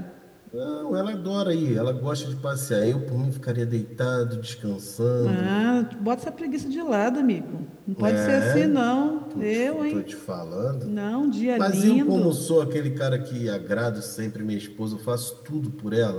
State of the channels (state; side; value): identical; both; correlation 1.00